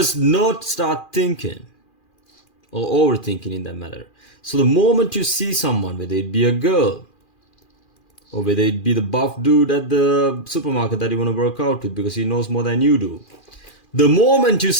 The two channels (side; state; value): right; late; 2.4 ms